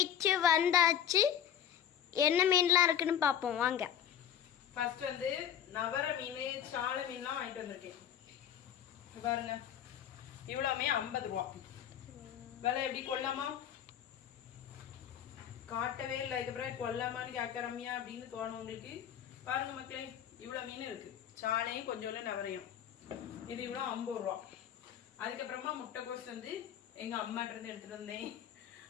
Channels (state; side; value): quieter; right; 9.6 dB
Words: வந்தாச்சு. என்ன மீன்லாம் இருக்குன்னு பார்ப்போம் வாங்க. ஃபர்ஸ்ட் வந்து நவர மீன், சால மீன்லாம் வாங்கிட்டு வந்திருக்கேன். பாருங்க, இவ்வளவுமே 50 ரூபா. விலை எப்படி கொள்ளாமா? காட்டவே இல்லை. இதுக்கப்புறம் கொல்லாமான்னு கேட்கறமியா அப்படின்னு தோணும் உங்களுக்கு. பாருங்க மக்களே, இவ்வளவு மீன் இருக்கு. சாலையும் கொஞ்சம் நவரையும். இது இவ்வளவு 50 ரூபா. அதுக்கப்புறமா முட்டைக்கோஸ் வந்து எங்க அம்மாட்ட இருந்து எடுத்துட்டு வந்தேன்.